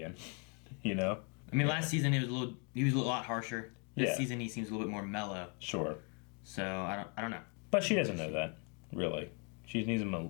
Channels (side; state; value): right; quieter; 36.1 dB